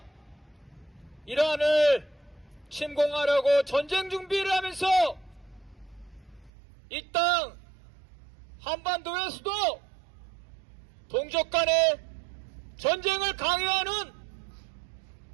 이란을 침공하려고 전쟁 준비를 하면서 이 땅 한반도에서도 동족 간의 전쟁을 강요하는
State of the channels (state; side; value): drops out; left; at 6.5 s